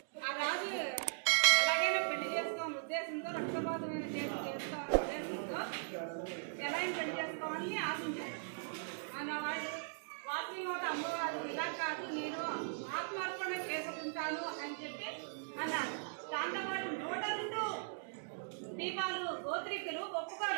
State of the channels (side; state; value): left; silent; digital silence